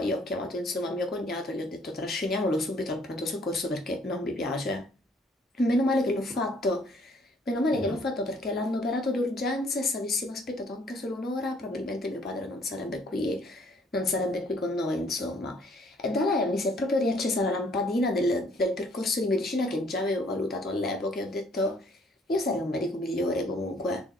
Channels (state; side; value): normal; both; correlation 0.62